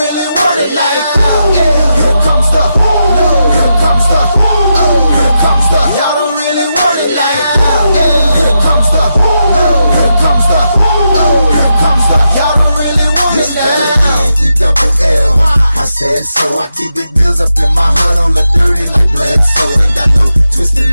want it like that. Yeah. Here comes the, no. Here comes the, oh. Here comes the, y'all don't really want it like that. Yeah. Here comes the, no. Here comes the, oh. Here comes the, y'all don't really want it like that. E-double-L. I said so. I keep big bills up in my heart on the dirty like Bledsoe. Ain't got no twist in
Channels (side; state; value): both; inverted; correlation -0.86